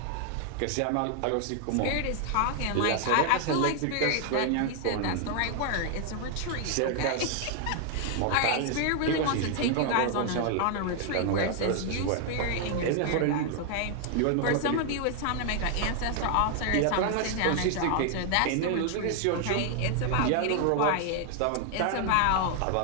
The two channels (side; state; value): both; different; correlation 0.00